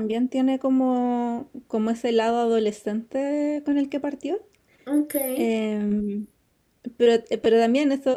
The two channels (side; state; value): both; identical; correlation 1.00